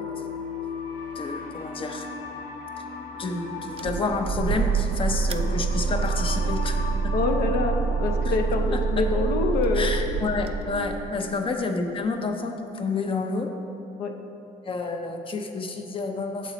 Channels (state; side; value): normal; both; correlation 0.54